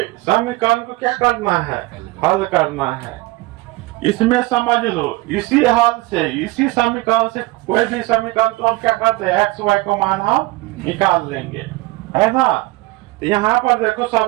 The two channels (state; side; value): quieter; left; 21.1 dB